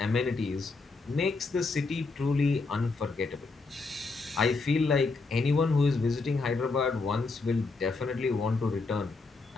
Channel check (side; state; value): right; quieter; 3.9 dB